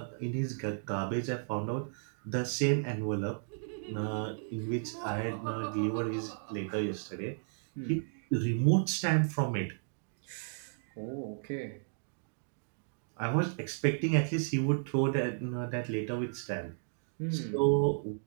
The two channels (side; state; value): left; silent; digital silence